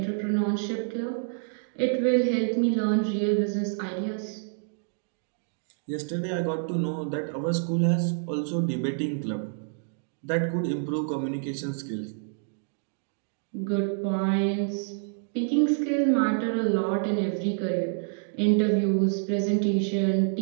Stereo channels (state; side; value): silent; left; digital silence